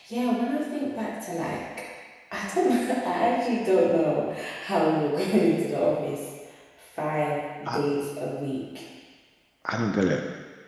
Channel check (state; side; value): identical; both; correlation 1.00